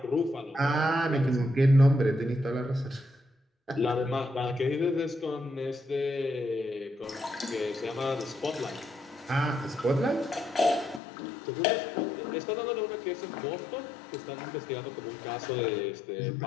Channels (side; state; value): right; drops out; at 11.0 s